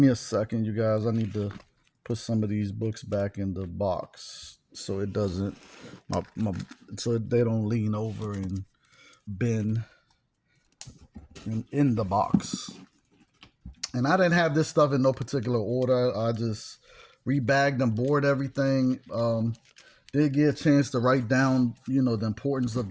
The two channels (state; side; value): identical; both; correlation 1.00